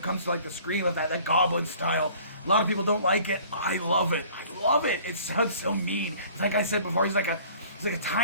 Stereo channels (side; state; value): both; inverted; correlation -0.51